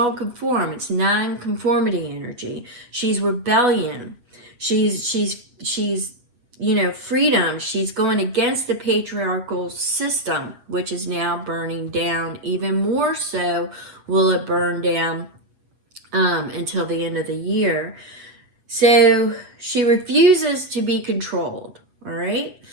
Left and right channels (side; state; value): left; late; 8.1 ms